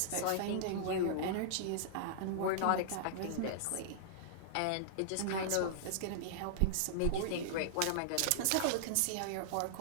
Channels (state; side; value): different; both; correlation -0.01